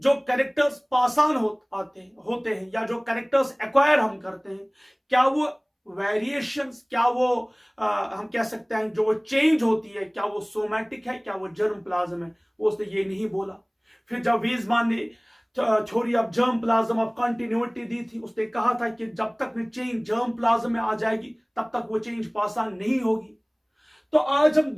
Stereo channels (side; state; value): both; identical; correlation 1.00